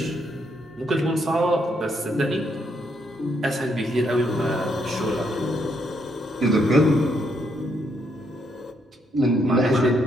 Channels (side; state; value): both; normal; correlation 0.75